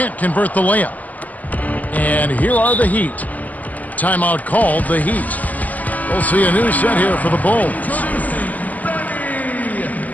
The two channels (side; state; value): right; late; 0.079 ms